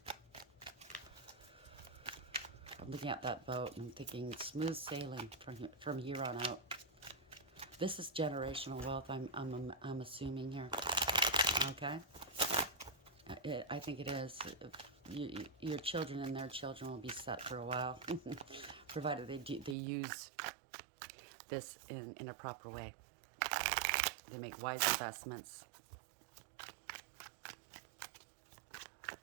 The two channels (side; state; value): left; drops out; at 19.8 s